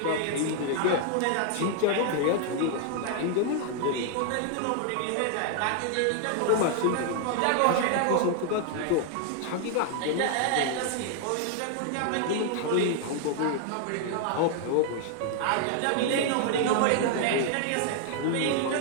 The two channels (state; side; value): different; both; correlation 0.00